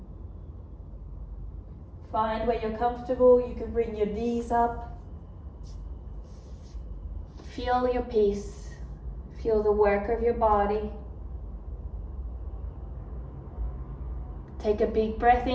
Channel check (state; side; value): identical; both; correlation 1.00